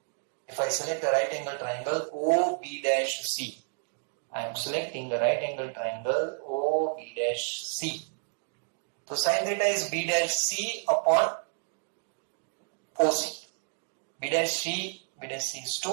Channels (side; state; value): left; silent; digital silence